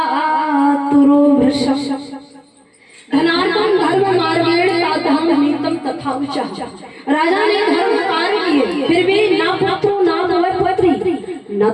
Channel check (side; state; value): both; identical; correlation 1.00